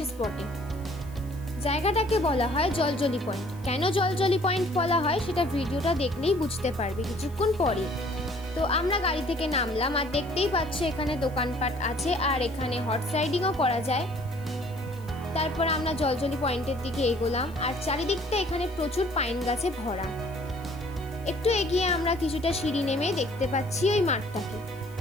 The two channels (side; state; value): left; noise; hiss, 25 dB below the sound